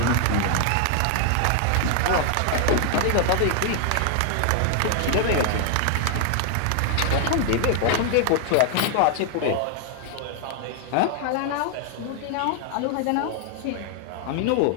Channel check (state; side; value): different; both; correlation 0.00